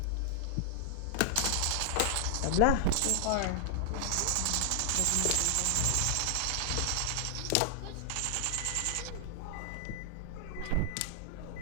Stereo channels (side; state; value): both; different; correlation -0.01